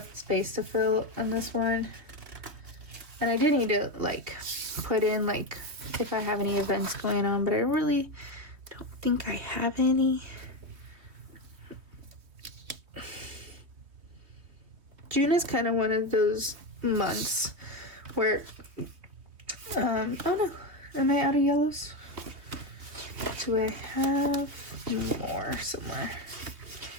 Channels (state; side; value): late; left; 3.2 ms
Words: space to fill on this one, and I do need to like put in like if I have any events going on, but I really don't think I have any. June is kind of one of those months where oh no, am I out of yellows? Do I have more somewhere?